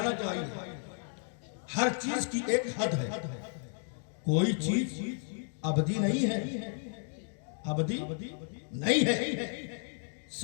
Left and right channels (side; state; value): right; silent; 56 dB below the other